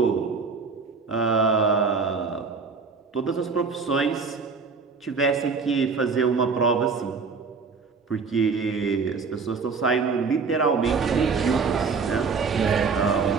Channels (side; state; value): left; quieter; 4.9 dB